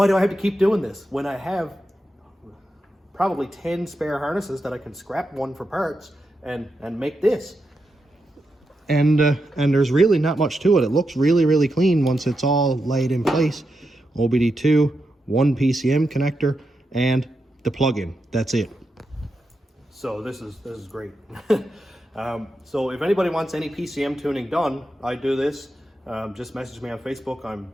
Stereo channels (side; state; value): both; normal; correlation 0.87